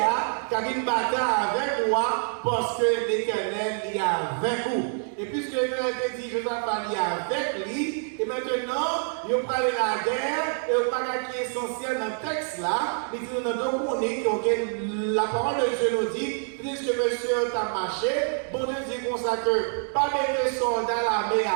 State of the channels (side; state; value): left; silent; 61 dB below the other